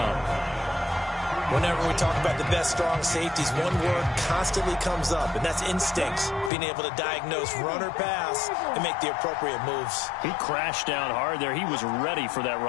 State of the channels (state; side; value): drops out; right; at 6.5 s